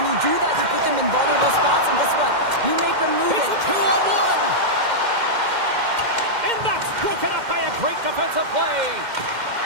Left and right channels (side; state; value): left; late; 2.1 ms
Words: you do that, you put them in vulnerable spots, and guess what? You make them move it. It's a 2-on-1! And that's broken up by a great defensive play.